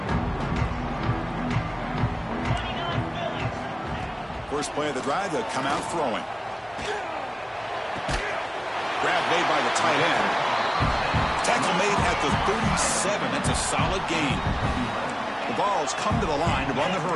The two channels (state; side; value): identical; both; correlation 1.00